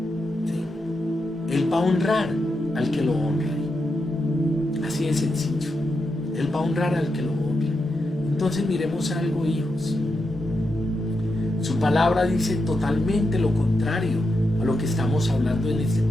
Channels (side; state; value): both; normal; correlation 0.86